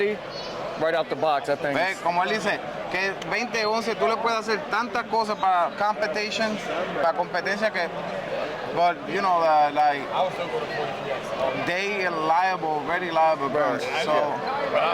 right out the box, I think. Ve, como él dice, que 2011 tú le puedes hacer tantas cosas para competition, para competencia que, but you know, like I would still go to 43X. they very liable guns. So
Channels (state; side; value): identical; both; correlation 1.00